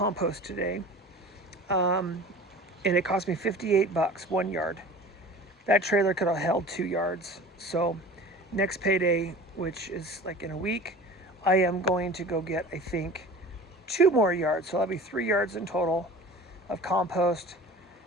today. And it cost me $58, 1 yard. That trailer could have held 2 yards. So next payday, which is like in a week, I am going to go get, I think, 2 more yards. So that'll be 3 yards in total of compost.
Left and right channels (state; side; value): normal; both; correlation 0.40